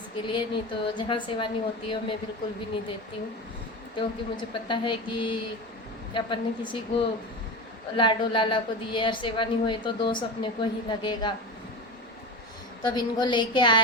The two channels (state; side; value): normal; both; correlation 0.25